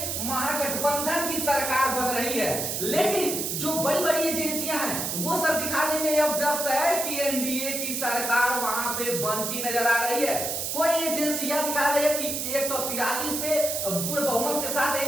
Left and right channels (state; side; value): noise; right; hiss, 2 dB below the sound